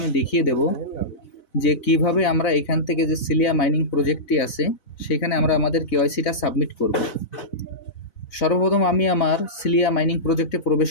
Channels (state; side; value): late; right; 4.0 ms